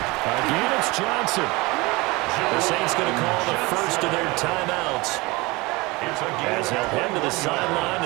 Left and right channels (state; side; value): quieter; left; 23.5 dB